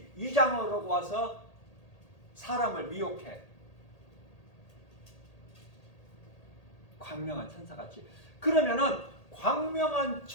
위장을 하고 와서 사람을 미혹해. 광명한 천사같이. 그러면은 광명한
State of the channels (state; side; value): late; right; 1.8 ms